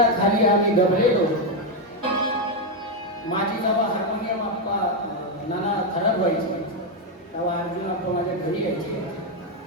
आम्ही दबलेलो होतो. माझी जेव्हा हार्मोनियम आप्पा नाना खराब व्हायची तेव्हा अर्जुन आप्पा माझ्या घरी यायचे.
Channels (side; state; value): both; normal; correlation 0.04